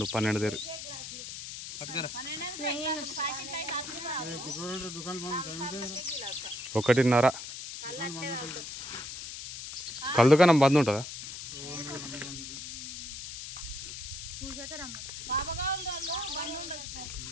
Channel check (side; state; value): left; noise; hiss, 9 dB below the sound